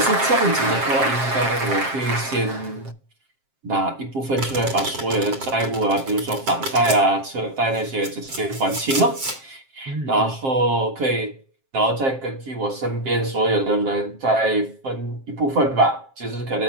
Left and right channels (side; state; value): left; late; 7.5 ms